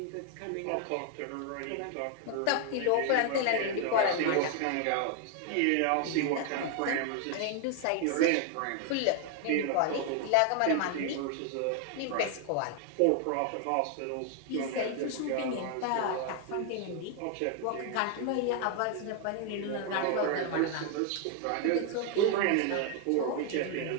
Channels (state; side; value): different; both; correlation 0.00